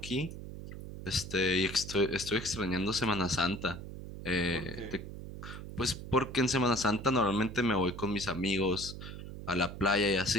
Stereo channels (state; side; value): noise; right; hum, 10 dB below the sound